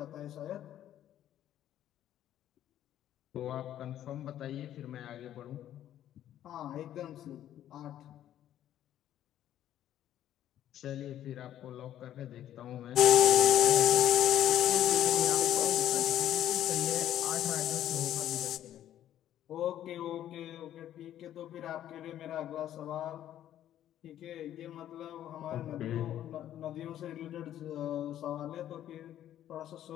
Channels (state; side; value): quieter; right; 11.7 dB